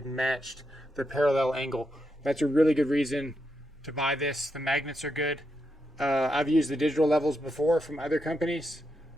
matched the parallel angle. That's a really good reason to buy this. The magnets are good. I've used the digital levels before from other companies,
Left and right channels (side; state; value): both; normal; correlation 0.83